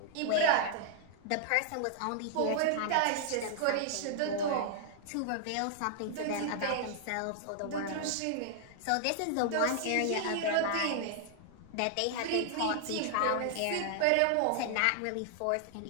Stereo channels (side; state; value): both; different; correlation -0.01